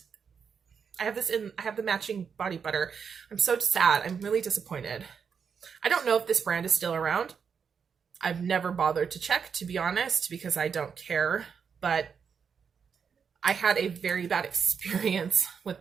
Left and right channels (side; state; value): left; quieter; 6.5 dB